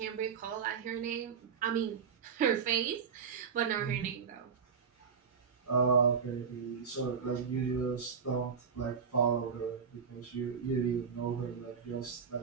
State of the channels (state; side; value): quieter; left; 6.3 dB